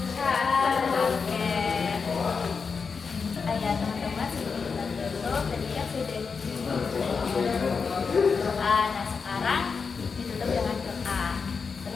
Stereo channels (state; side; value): quieter; right; 5.3 dB